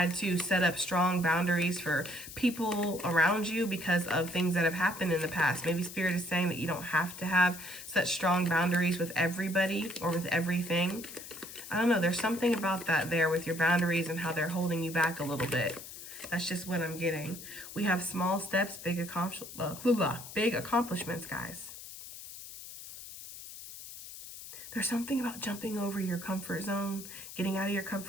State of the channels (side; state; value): left; noise; hiss, 13 dB below the sound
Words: to set up strong boundaries for people around you because of things that have happened in the past. Maybe Spirit is saying that you don't have to have such strong boundaries with everybody or with everything. I don't know. There's something about that there with your boundaries and how they're holding you back a little bit. That's just what I'm getting. We have small steps, big accomplishments, guys. There's something about jumping over your comfort zone, getting out of your